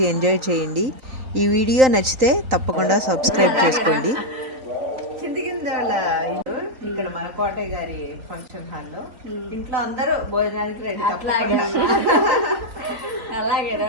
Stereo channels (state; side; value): late; left; 3.9 ms